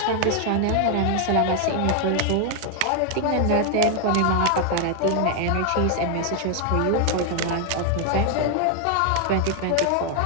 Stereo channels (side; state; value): both; different; correlation 0.00